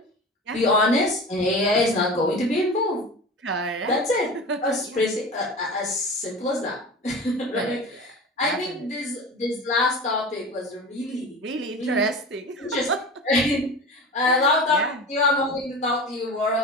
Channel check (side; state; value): both; normal; correlation 0.33